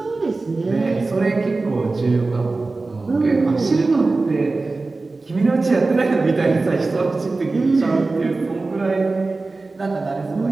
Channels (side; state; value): left; quieter; 3.5 dB